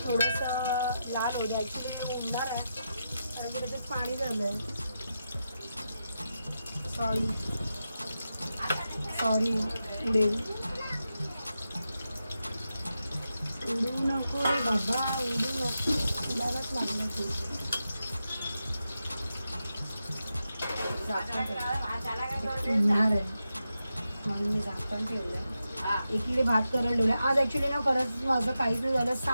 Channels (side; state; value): both; inverted; correlation -0.88